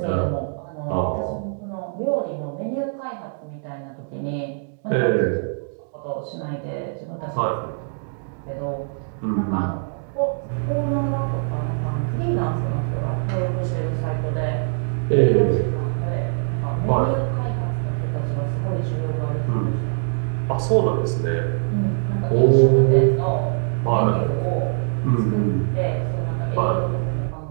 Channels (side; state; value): left; silent; digital silence